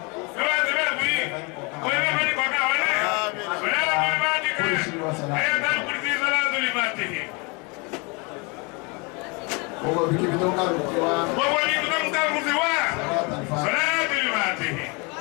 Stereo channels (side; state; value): right; quieter; 30.2 dB